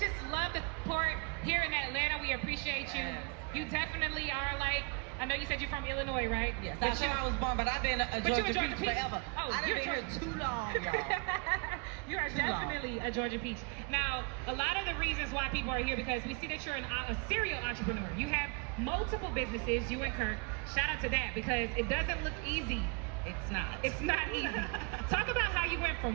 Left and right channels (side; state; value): left; quieter; 31.6 dB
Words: love the support here in Atlanta. We appreciate you. You definitely are like, I know you said you're from Illinois, right? Yes, that's where I was born, but I've been a Georgia Peach forever. Oh, I've been here too long, y'all. You are definitely a Georgia Peach. Now, a lot of the reasons why people are here because we see that you're a serial entrepreneur. You have multiple businesses, you and Kirk. Shout out to that because it doesn't look easy. It's not. It's not easy. Talk about how you went